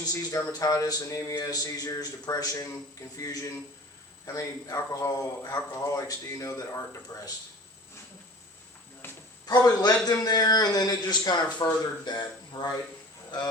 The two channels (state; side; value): normal; both; correlation 0.42